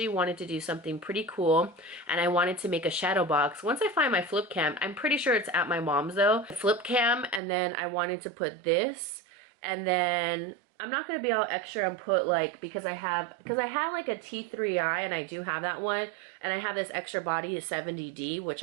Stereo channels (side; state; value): left; drops out; at 7.4 s